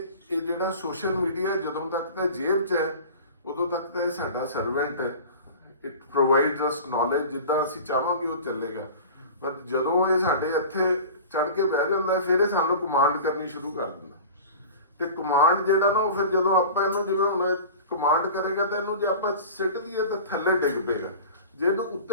ਇਹ ਜਿਹੜਾ ਸੋਸ਼ਲ ਮੀਡੀਆ ਜਦੋਂ ਤੱਕ ਤਾਂ ਜੇਬ 'ਚ ਹੈ ਉਦੋਂ ਤੱਕ ਤਾਂ ਇਹ ਸਾਡਾ ਸਰਵੈਂਟ ਹੈ। ਇਟ ਪ੍ਰੋਵਾਈਡਸ ਅਸ ਨੌਲੇਜ, ਜਿੱਦਾਂ ਅਸੀਂ ਚਾਹਾਂਗੇ ਉਹ ਚੱਲੇਗਾ। ਪਰ ਜਦੋਂ ਇਹ ਸਾਡੇ ਇੱਥੇ ਚੜ ਕੇ ਬਹਿ ਜਾਂਦਾ ਫਿਰ ਇਹ ਸਾਨੂੰ ਕਮਾਂਡ ਕਰਨੀ ਸ਼ੁਰੂ ਕਰ ਦਿੰਦਾ, ਤੇ ਕਮਾਂਡ ਜਿਹੜਾ ਨਾ ਉਹ ਫਿਰ ਜਦੋਂ ਆਪਾਂ ਇਹਨੂੰ ਜਿਵੇਂ ਹੁਣ ਕਮਾਂਡ ਕਰੇਗਾ ਤਾਂ ਇਹਨੂੰ ਜੇ ਆਪਾਂ ਸਿੱਟ ਦਈਏ ਤਾਂ ਥੱਲੇ ਡਿੱਗ ਪਏਗਾ। ਜੇ ਇਹਨੂੰ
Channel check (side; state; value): both; inverted; correlation -0.37